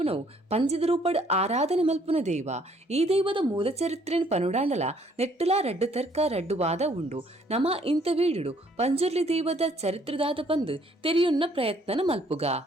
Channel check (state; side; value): normal; both; correlation 0.63